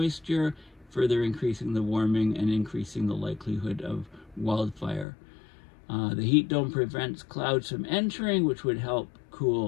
further increasing the warming and increasing the likelihood of wildfire. The heat dome prevents clouds from entering, which would help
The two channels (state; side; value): drops out; right; at 5.1 s